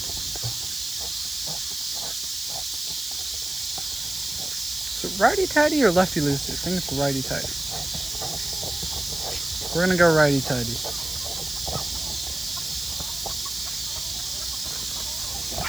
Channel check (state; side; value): noise; right; hiss, 7 dB below the sound